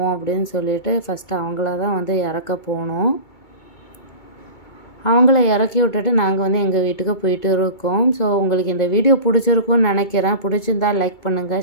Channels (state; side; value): late; right; 2.2 ms